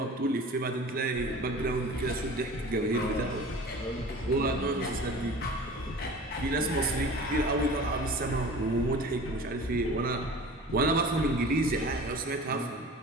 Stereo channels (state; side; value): normal; both; correlation 0.40